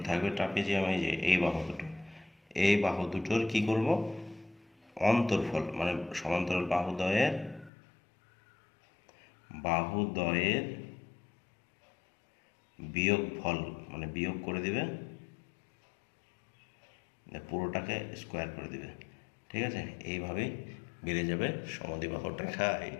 থাকবে ট্রাপিজিয়ামে, যে এই বাহু দুটো, এই বাহু দুটোর কি করব, অন্তর্ফল মানে সমান্তরাল বাহুদ্বয়ের বিয়োগফল মানে বিয়োগ করে দিবে, পুরোটাকে স্কোয়ার করে দিবে। ঠিক আছে, এইভাবেই বেড়ে যাবে সমদ্বিবাহুটা। খাই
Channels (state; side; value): drops out; right; at 7.7 s